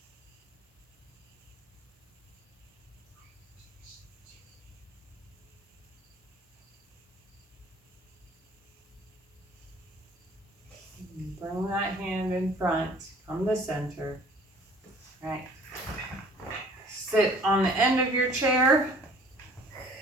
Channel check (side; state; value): both; normal; correlation 0.52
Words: Bring that hand in front, come to center. All right. Sit on the end of your chair,